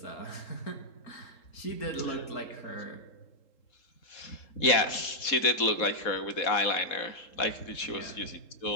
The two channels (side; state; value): right; late; 3.8 ms